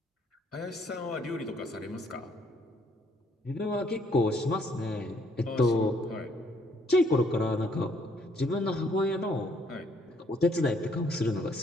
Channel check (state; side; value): normal; both; correlation 0.66